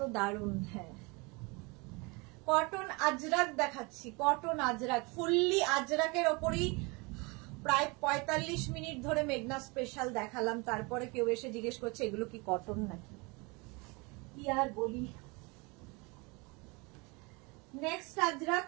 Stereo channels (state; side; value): quieter; left; 27.9 dB